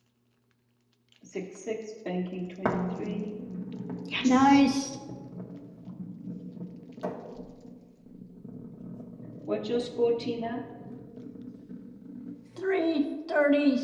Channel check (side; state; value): both; identical; correlation 1.00